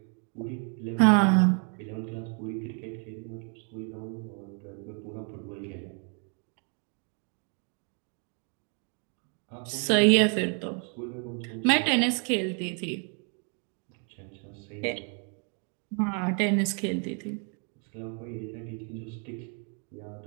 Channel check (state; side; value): quieter; left; 39.9 dB